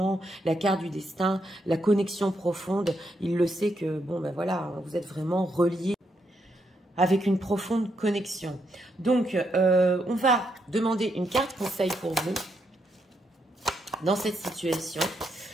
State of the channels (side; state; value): both; normal; correlation 0.79